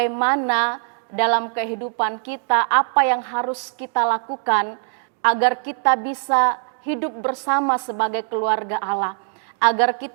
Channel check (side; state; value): left; silent; 59 dB below the other